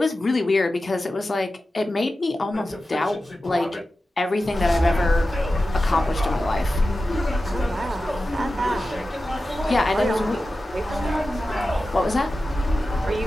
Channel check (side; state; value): both; normal; correlation 0.93